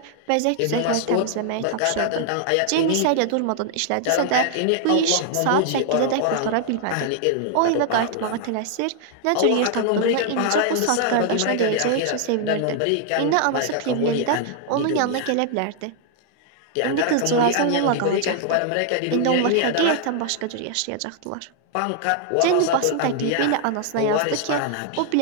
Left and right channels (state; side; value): different; both; correlation 0.00